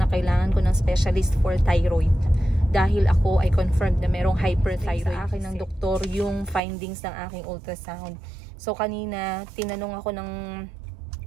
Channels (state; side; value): drops out; left; at 6.6 s